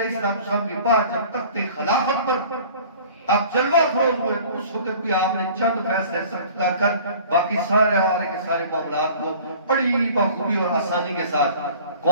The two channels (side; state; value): both; inverted; correlation -0.47